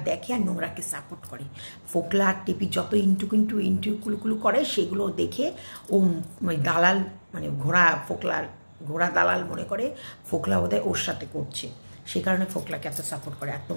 দেখে আর নোংরাকে সাপোর্ট করে। ফোকলা আর টেপি যত ইন্টুকুলুকুলু করে সেগুলো দেখে ও দালাল মানে ঘোড়া দালাল মনে করে ফোকলা ওদের ওর সাথে করছে, সেই কারণে ফোকলাকে এত সাপোর্ট করে। আর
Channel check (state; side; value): inverted; both; correlation -1.00